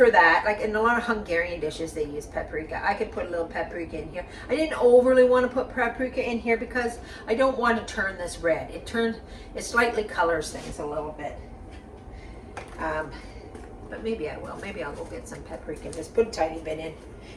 that, like in a lot of Hungarian dishes, they use paprika. I could put a little paprika in here. I didn't overly want to put paprika in here because I don't want to turn this red. It slightly colors things a little bit. But maybe I will. Maybe I'll go get some paprika and just put a tiny bit in,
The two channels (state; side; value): identical; both; correlation 1.00